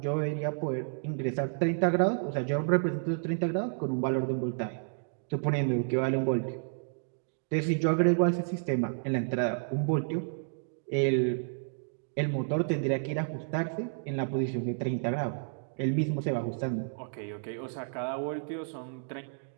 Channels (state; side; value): silent; left; digital silence